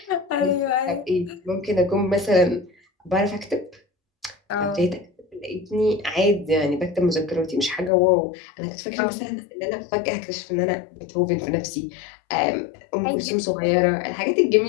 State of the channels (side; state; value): right; drops out; at 7.9 s